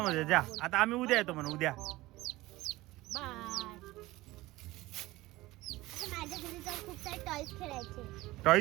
जा आता आम्ही उद्या येतो म्हणून उद्या बाय माझ्या घरी जाऊन खूप सारे टॉयज खेळायचे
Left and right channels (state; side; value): quieter; left; 18.8 dB